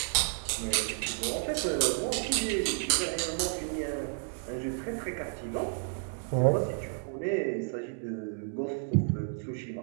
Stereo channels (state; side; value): silent; left; 57 dB below the other